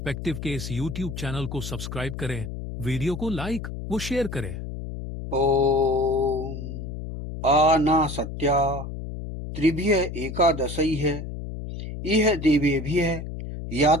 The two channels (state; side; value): noise; left; hum, 7 dB below the sound